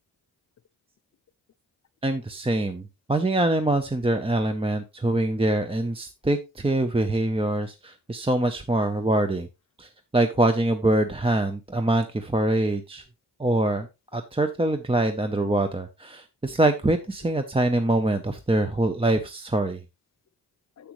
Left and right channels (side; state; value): both; normal; correlation 0.70